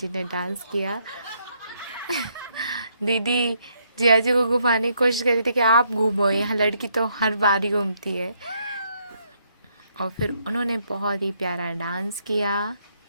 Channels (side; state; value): both; inverted; correlation -0.73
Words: ने डांस किया। दीदी जिया जी को घुमाने की कोशिश करी थी कि आप घूमो, यहाँ लड़की तो हर बार ही घूमती है। और फिर उन्होंने बहुत ही प्यारा डांस किया।